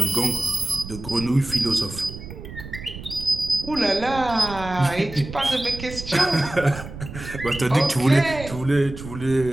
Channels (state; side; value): noise; right; rumble, 12 dB below the sound